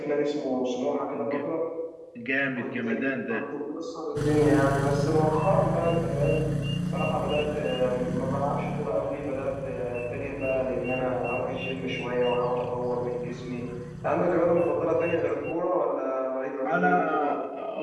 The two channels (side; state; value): both; identical; correlation 1.00